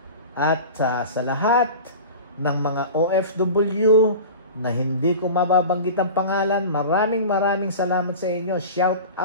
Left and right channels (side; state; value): both; inverted; correlation -0.34